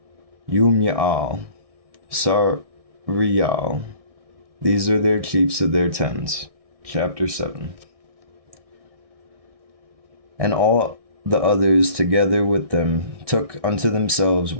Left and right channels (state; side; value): late; left; 1.6 ms